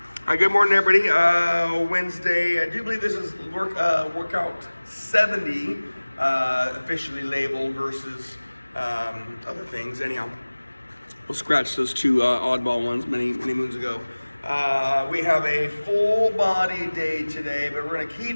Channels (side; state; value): both; inverted; correlation -1.00